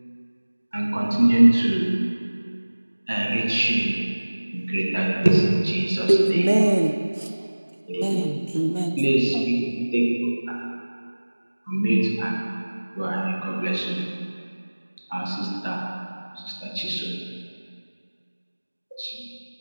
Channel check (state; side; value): inverted; both; correlation -1.00